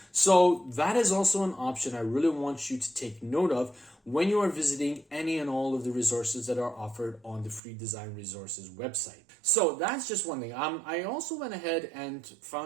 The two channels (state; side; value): drops out; left; at 7.6 s